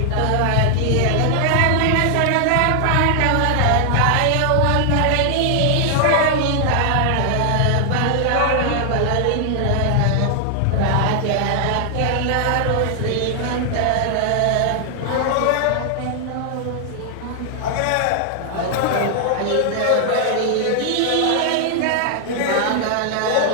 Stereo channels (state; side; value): different; both; correlation 0.00